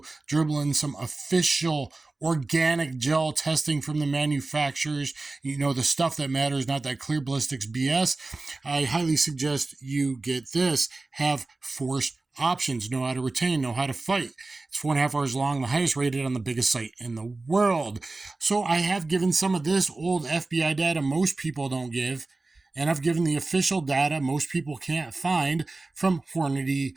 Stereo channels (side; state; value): left; quieter; 3.3 dB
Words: dribble in some official organic gel testing from the manufacturers. You know, the stuff that matters, not that clear ballistics BS. I highly suggest you get this. Have force options, know how to retain, know how to fight. It's 4.5 hours long, the highest rated on the biggest site in the world. So I have given some of this old FBI data most people don't give, and I've given the official data most people can't find from